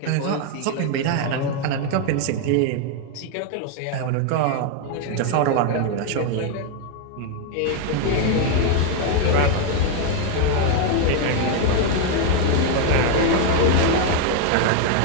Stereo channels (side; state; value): both; different; correlation 0.01